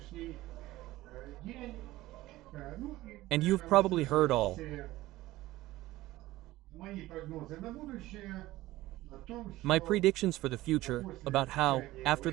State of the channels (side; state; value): left; quieter; 17.1 dB